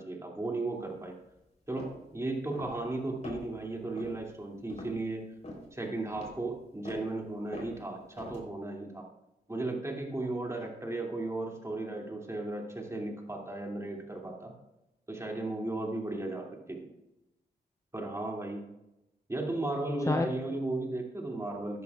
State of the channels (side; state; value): both; normal; correlation 0.81